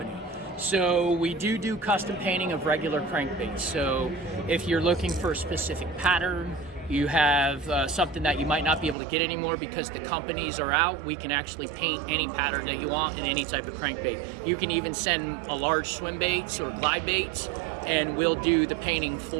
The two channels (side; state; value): left; drops out; at 9.0 s